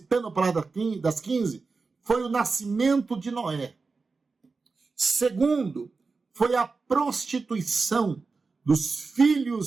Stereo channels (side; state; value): left; quieter; 4.3 dB